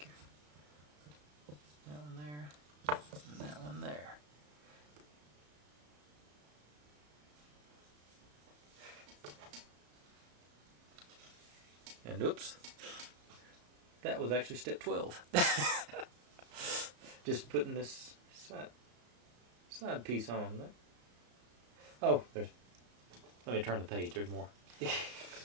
here. That one there, and that one there. And oops, that was actually step 12. Just putting this side piece on. Oh, let me turn the page, there's more.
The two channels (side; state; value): left; late; 34 ms